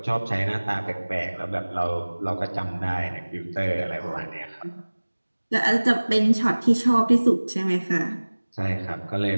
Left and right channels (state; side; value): inverted; both; correlation -1.00